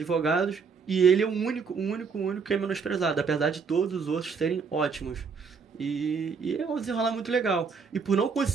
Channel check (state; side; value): quieter; left; 5.5 dB